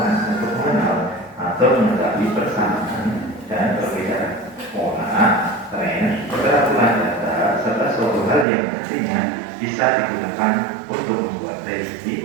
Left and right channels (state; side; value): drops out; left; at 8.5 s